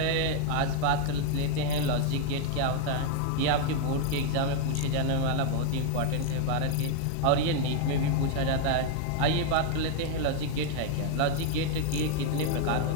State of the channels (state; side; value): different; both; correlation 0.00